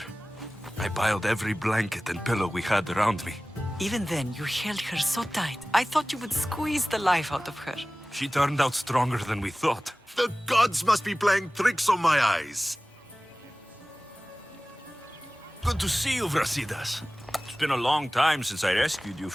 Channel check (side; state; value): both; normal; correlation 0.97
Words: I piled every blanket and pillow we had around me. Even then, you held her so tight, I thought you would squeeze the life out of her. She turned out stronger than we thought. The gods must be playing tricks on my eyes. Good to see you, Brasidas. It's been a long time since I rescued you